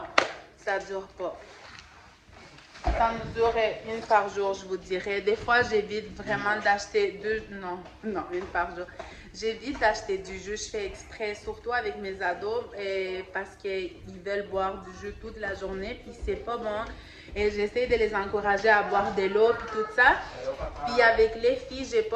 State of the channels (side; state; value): both; identical; correlation 1.00